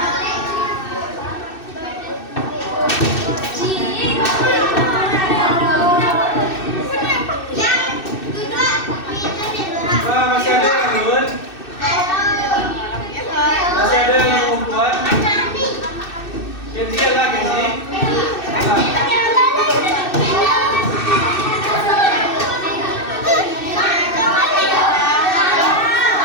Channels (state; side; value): late; right; 2.6 ms